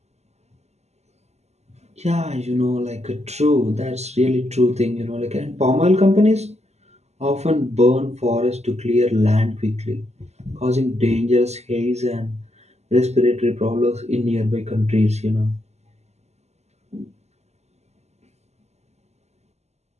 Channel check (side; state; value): left; late; 0.32 ms